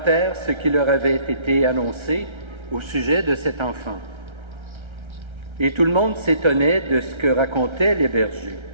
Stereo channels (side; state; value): left; late; 1.3 ms